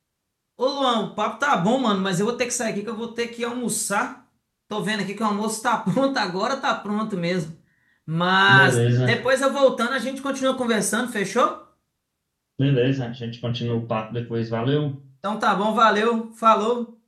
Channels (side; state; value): both; identical; correlation 1.00